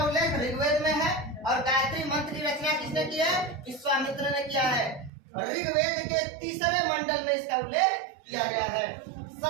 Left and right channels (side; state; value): left; drops out; at 5.1 s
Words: उल्लेख ऋग्वेद में है और गायत्री मंत्र की रचना किसने की है? विश्वामित्र ने किया है। ऋग्वेद के तीसरे मंडल में इसका उल्लेख किया गया है।